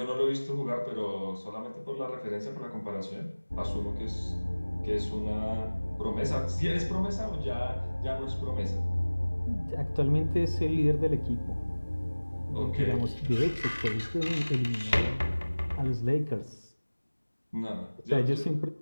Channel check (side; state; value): both; inverted; correlation -1.00